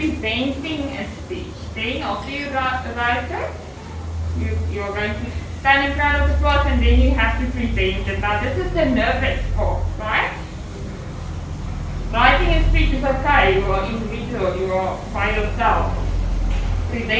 a speech. Then, after you write it, you're going to stand in front of the class and then you have to present it. Now, this is the nervous part, right? Writing a speech is okay, you are individual, you are by yourself.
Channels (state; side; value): identical; both; correlation 1.00